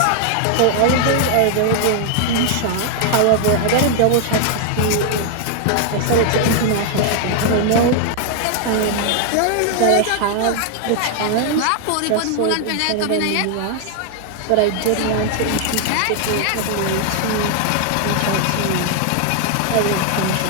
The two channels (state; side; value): different; both; correlation 0.00